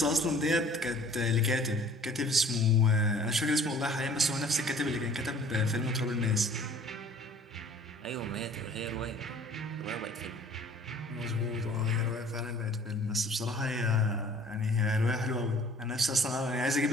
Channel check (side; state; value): both; normal; correlation 0.51